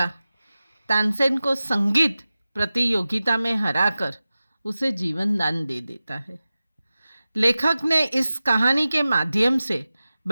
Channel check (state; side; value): inverted; both; correlation -0.96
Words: तानसेन को संगीत प्रतियोगिता में हराकर उसे जीवन दान दे देता है। लेखक ने इस कहानी के माध्यम से